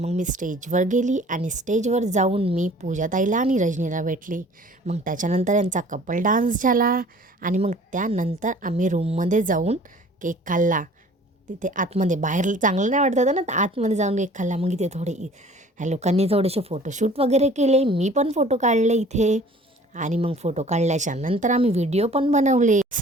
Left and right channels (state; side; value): normal; both; correlation 0.50